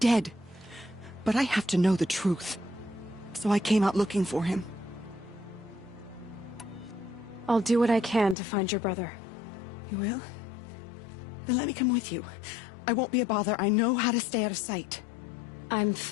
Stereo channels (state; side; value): drops out; right; at 8.3 s